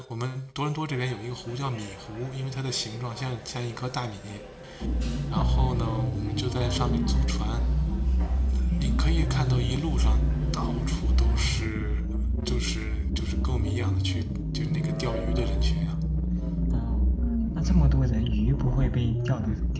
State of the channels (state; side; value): identical; both; correlation 1.00